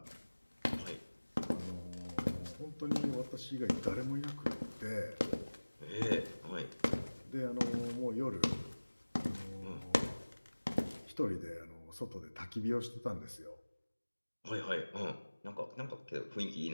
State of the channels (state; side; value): inverted; both; correlation -1.00